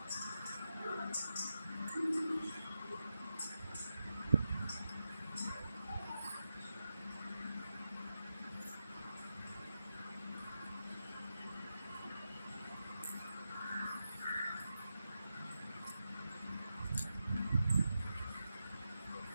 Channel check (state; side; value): inverted; both; correlation -0.89